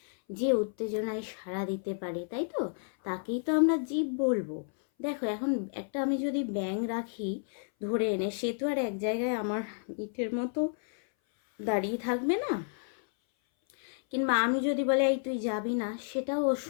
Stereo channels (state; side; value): silent; right; 57 dB below the other